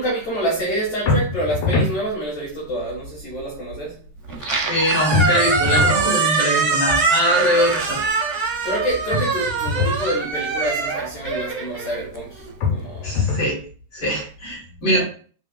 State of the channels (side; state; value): right; late; 13 ms